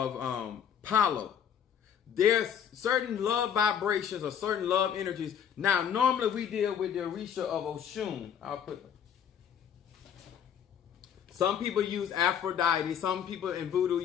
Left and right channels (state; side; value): quieter; right; 8.4 dB